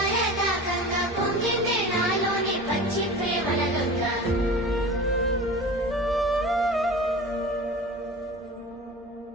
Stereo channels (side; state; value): both; normal; correlation 0.35